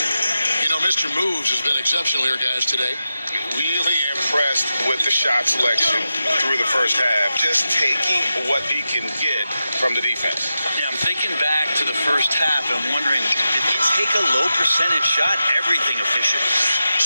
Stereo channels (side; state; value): both; inverted; correlation -0.90